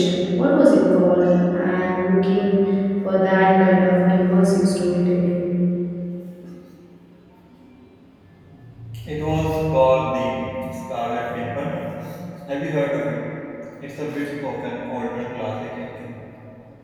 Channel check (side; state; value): both; identical; correlation 1.00